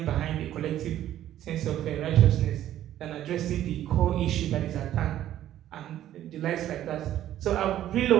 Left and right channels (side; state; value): left; quieter; 12.3 dB